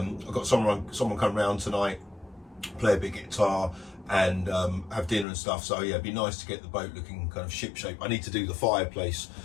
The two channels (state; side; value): drops out; right; at 5.2 s